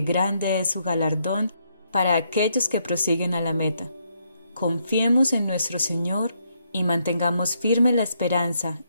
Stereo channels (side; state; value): both; inverted; correlation -0.75